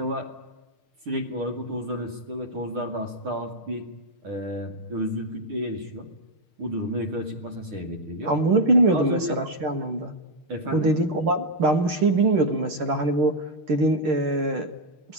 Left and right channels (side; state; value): left; late; 6.5 ms